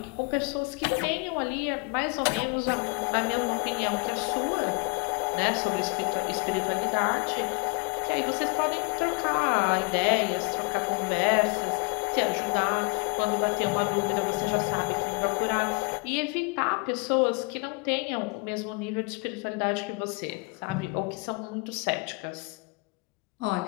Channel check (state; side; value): quieter; right; 30.2 dB